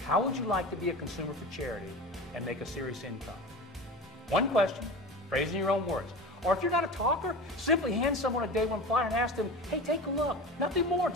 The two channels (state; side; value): normal; both; correlation 0.31